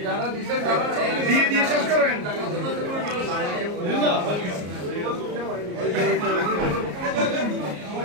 দিয়ে দিয়ে শেষ করেন।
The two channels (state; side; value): late; left; 34 ms